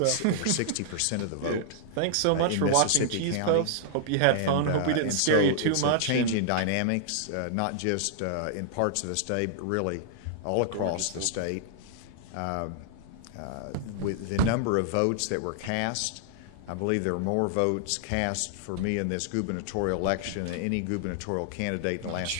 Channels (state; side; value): different; both; correlation -0.01